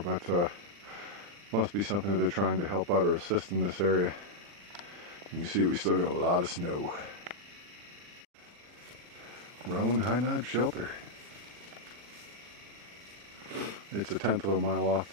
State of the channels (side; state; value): left; late; 40 ms